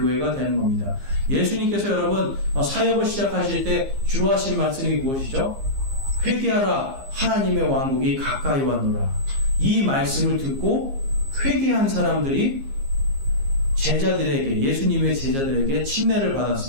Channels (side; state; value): left; late; 15 ms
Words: 되는 겁니다. 예수님께서 여러분 사역을 시작하실 때 주로 하신 말씀이 무엇이죠? 회개하라, 하나님의 왕국이 가까이 왔노라. 이 말씀을 듣고 회개한 사람들이 제자들에게, 예수님의 제자들에게 침례를